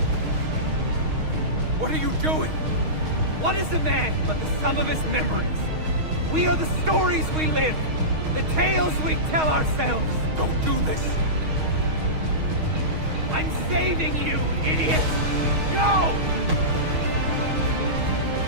What are you doing? What is a man but the sum of his memories? We are the stories we live, the tales we tell ourselves. Don't do this! I'm saving you, idiot! Go!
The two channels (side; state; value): left; late; 6.4 ms